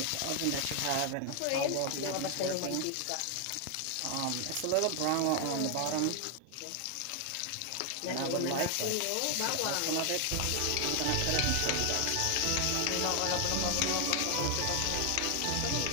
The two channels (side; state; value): both; different; correlation 0.00